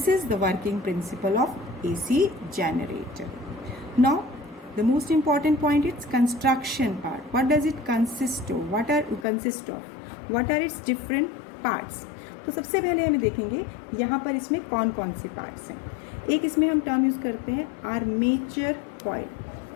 is the working principle of AC generator. Now the most important point is construction part. What does it consist of? What are its different parts? तो सबसे पहले हमें देखेंगे यहाँ पर इसमें कौन कौन से पार्ट्स हैं. एक इसमें हम टर्म यूज करते हैं armature coil.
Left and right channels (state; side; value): drops out; right; at 9.2 s